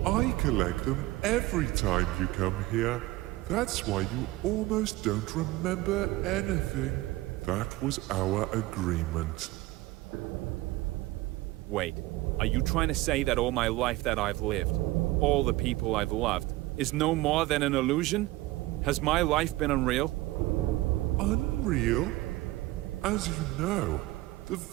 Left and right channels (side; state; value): left; quieter; 18.5 dB